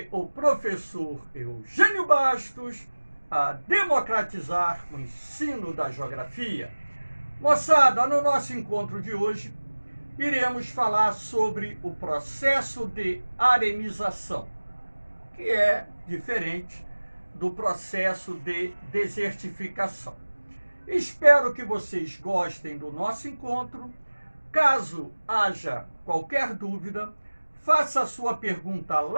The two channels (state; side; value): inverted; both; correlation -1.00